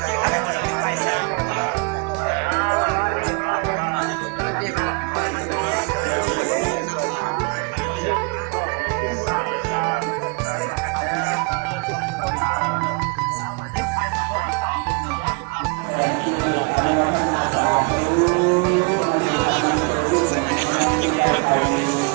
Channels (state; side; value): quieter; left; 33.3 dB